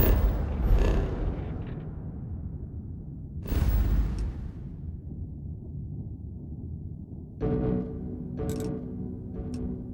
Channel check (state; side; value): identical; both; correlation 1.00